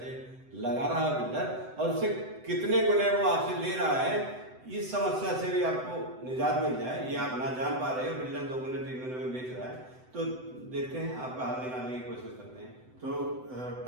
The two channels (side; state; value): left; late; 7.9 ms